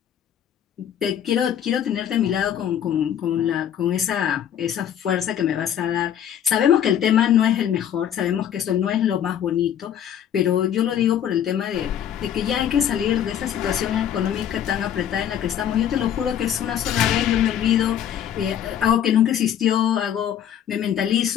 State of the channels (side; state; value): right; quieter; 9.7 dB